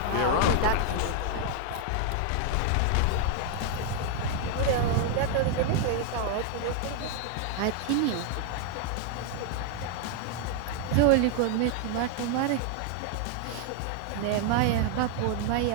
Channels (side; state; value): both; different; correlation 0.00